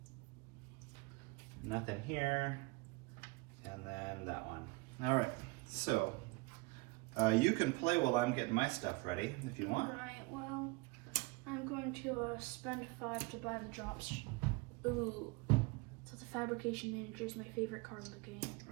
Nothing here. And then that one. All right. So you can play while I'm getting my stuff ready if you want. Right, well, I'm going to spend 5 to buy the drops. Ooh. So the Fabrication Manager is my favorite card in the game.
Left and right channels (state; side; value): quieter; left; 25.6 dB